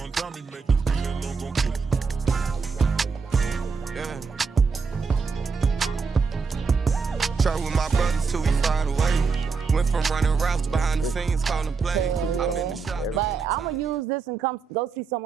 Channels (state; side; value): quieter; left; 5.0 dB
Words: Dummy make the feeling I'm gon' kill it. Yeah. Trap with my brothers till we find a way. Went from running routes behind the scenes, calling play. I'm in the shop. But I'm gonna use this and come go see some